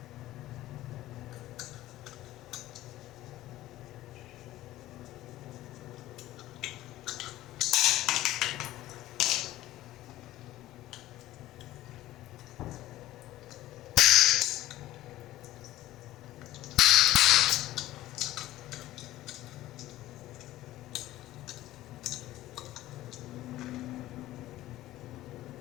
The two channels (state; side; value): quieter; right; 15.5 dB